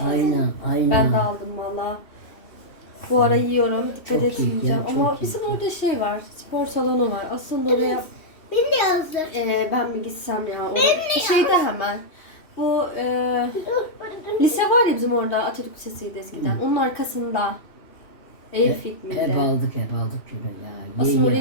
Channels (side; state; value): right; late; 2.7 ms